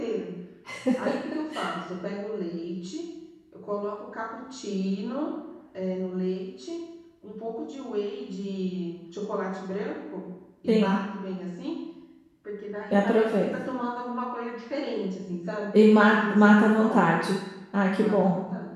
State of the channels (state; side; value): identical; both; correlation 1.00